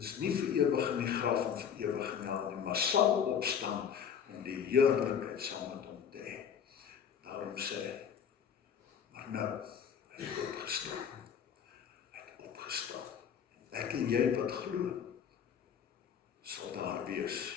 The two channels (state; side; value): quieter; right; 7.8 dB